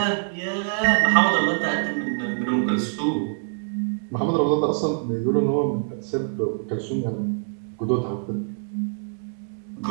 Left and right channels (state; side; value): silent; left; digital silence